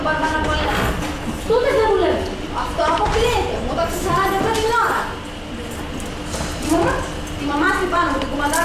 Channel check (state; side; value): identical; both; correlation 1.00